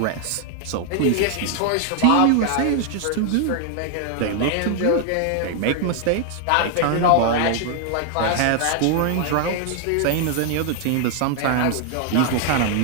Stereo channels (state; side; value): different; both; correlation 0.00